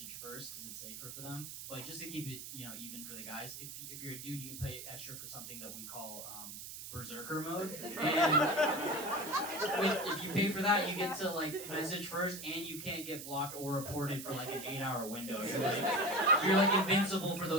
first because it's safer for them. But just to keep it, even for the guys, if you're a dude, you can pay extra for something that we call berserker mode. And if you pay for that, you get to like message first, and you can't get blocked or reported for like an 8-hour window. You're like invincible for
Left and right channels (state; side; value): noise; right; hiss, 10 dB below the sound